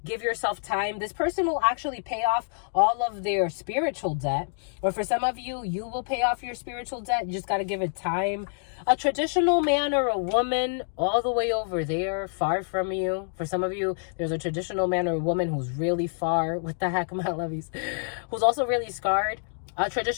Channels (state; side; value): silent; right; digital silence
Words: Give yourself time. This person will actually pay off all of their spiritual debt. Or for some of you, you will pay off your spiritual debt. You just got to give it time. A traditional man or a woman all the way over there, far from you. For some of you, there's a traditional man or a woman who's really far. What the heck, my lovies? Who's also really scarred. A